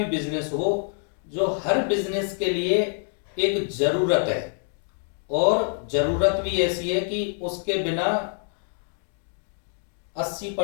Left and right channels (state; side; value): silent; right; digital silence